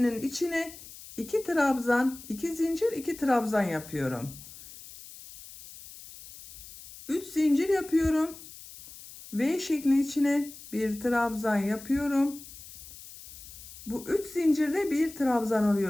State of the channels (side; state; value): left; noise; hiss, 16 dB below the sound